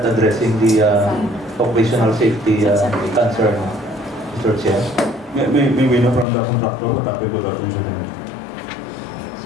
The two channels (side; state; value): right; drops out; at 6.2 s